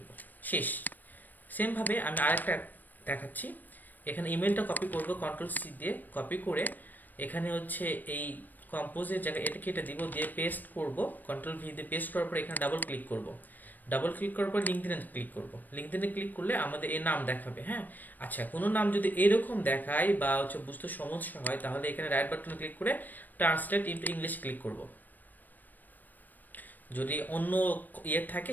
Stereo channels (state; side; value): late; right; 0.087 ms